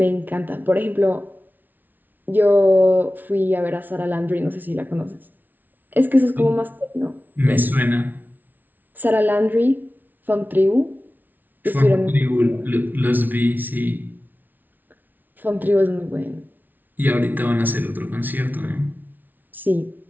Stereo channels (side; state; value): left; late; 0.085 ms